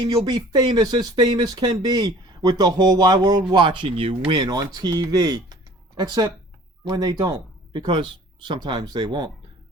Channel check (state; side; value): normal; both; correlation 0.50